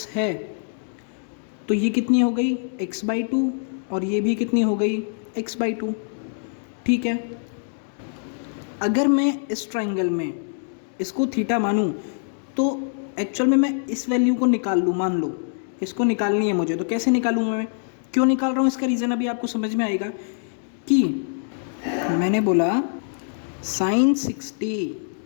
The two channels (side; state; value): right; silent; digital silence